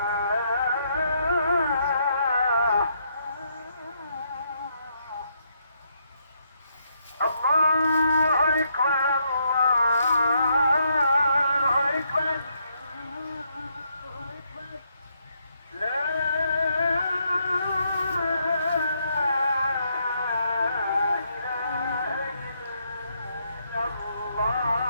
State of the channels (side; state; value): both; inverted; correlation -0.75